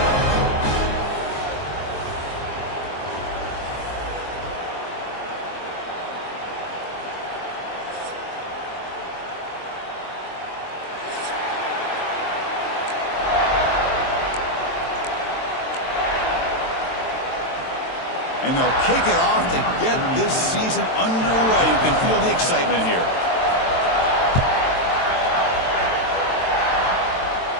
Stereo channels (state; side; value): late; right; 22 ms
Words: And they'll kick it off to get this season underway. You can feel the excitement here.